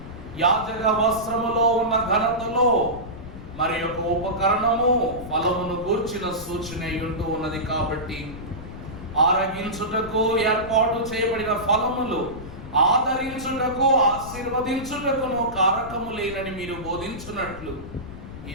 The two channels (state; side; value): noise; left; rumble, 13 dB below the sound